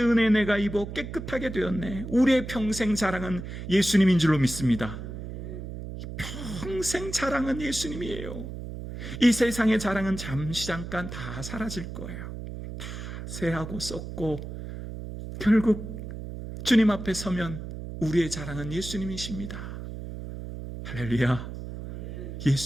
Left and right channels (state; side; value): noise; right; hum, 9 dB below the sound